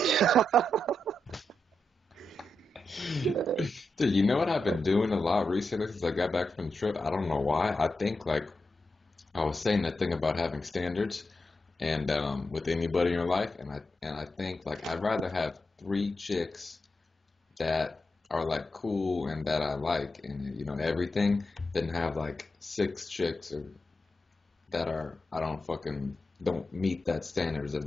Dude, you know what I've been doing a lot recently since I got back from the trip? I don't know why. I think like I was saying that thing about having standards and with anybody in your life, and I think like I'd rather have three chicks that are like cool and that I like and everything than have like six chicks that are I don't fucking don't meet that standards of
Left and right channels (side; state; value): both; normal; correlation 0.87